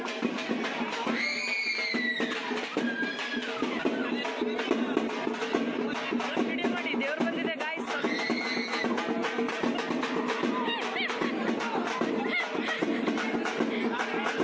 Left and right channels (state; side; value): identical; both; correlation 1.00